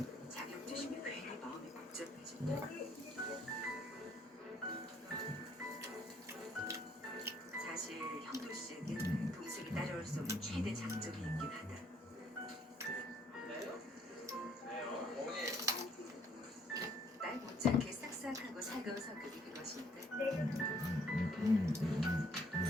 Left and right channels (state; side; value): normal; both; correlation 0.63